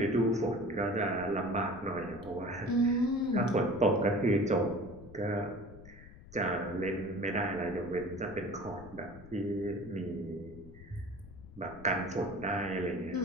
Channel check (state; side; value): noise; left; rumble, 18 dB below the sound